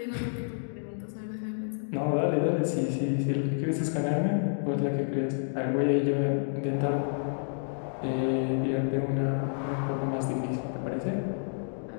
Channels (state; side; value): silent; right; digital silence